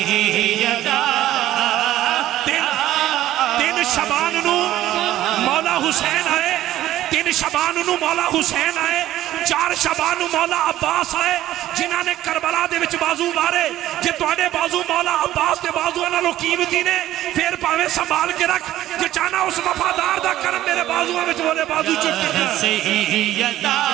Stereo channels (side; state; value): left; quieter; 13.9 dB